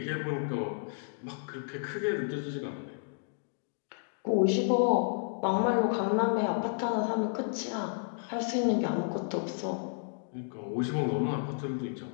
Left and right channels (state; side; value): silent; right; digital silence